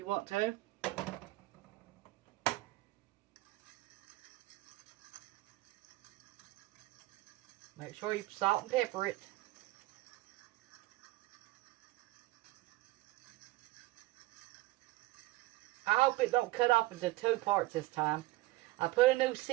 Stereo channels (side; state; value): left; quieter; 19.2 dB